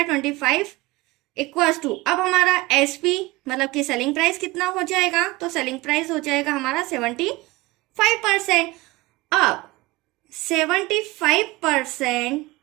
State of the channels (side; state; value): left; quieter; 21.3 dB